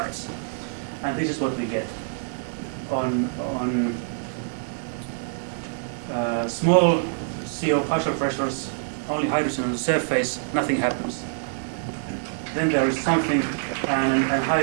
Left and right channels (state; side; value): silent; left; digital silence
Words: And this is what we get. On small CO partial pressures, only hydrogen on the surface, nothing happens. Then there is something, and